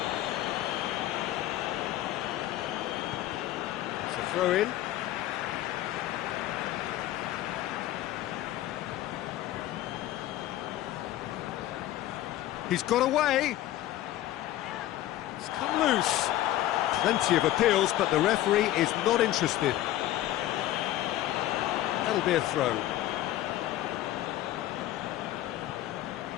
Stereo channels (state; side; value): quieter; right; 14.2 dB